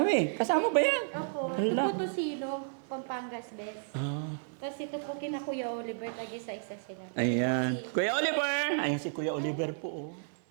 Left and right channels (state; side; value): silent; left; 56 dB below the other